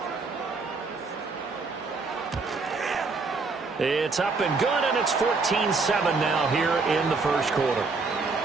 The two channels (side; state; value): left; quieter; 4.1 dB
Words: It's up and good, and it's 14-7 now here in the first quarter.